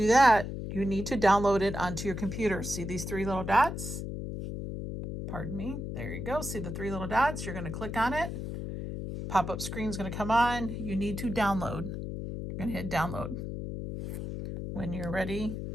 that, you need to download it onto your computer. See these three little dots? Pardon me. There you go. See the three little dots? You're going to click on it. Pop-up screen is going to come on. You need to download. You're going to hit download. When you're ready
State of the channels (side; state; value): left; noise; hum, 6 dB below the sound